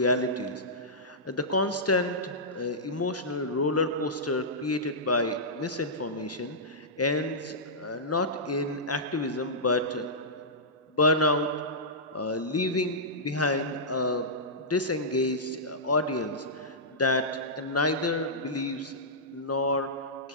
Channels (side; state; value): both; normal; correlation -0.15